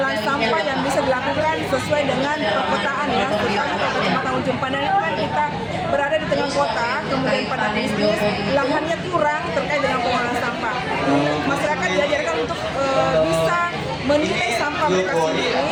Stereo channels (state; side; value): identical; both; correlation 1.00